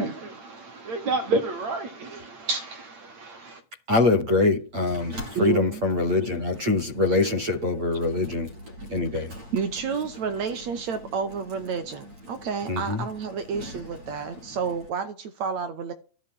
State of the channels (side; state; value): left; late; 8.7 ms